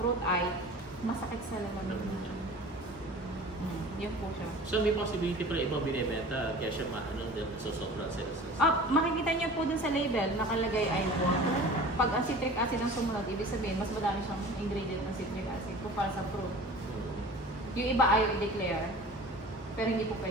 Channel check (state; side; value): normal; both; correlation 0.41